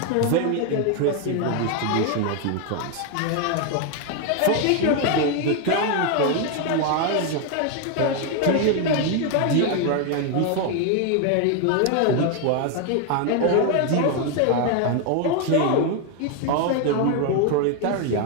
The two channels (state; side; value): different; both; correlation 0.01